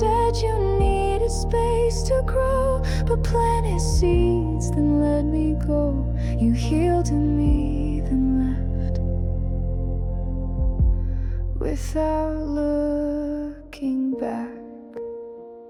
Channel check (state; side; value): identical; both; correlation 1.00